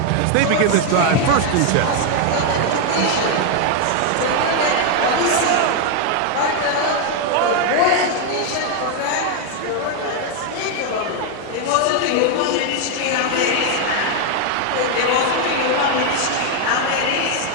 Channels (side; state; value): both; different; correlation 0.01